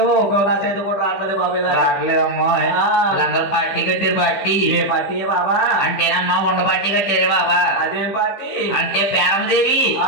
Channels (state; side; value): late; right; 15 ms